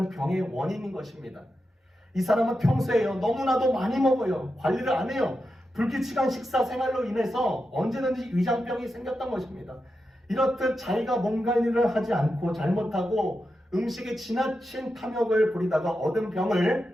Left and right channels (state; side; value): normal; both; correlation 0.88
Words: 병의 원인인 것입니다. 이 사람은 평소에요 너무나도 많이 먹어요. 관리를 안 해요. 불규칙한 식사 생활로 인해서 언제든지 위장병이 생겼던 것입니다. 이렇듯 자기가 몸 관리를 하지 않고 잘못하고 음식에 지나친 탐욕을 부리다가 얻은